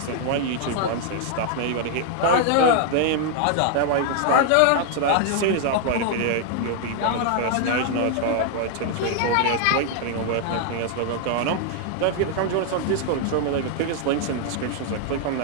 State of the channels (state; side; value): different; both; correlation 0.00